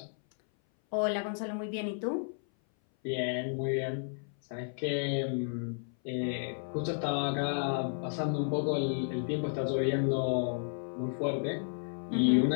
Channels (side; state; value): right; silent; 56 dB below the other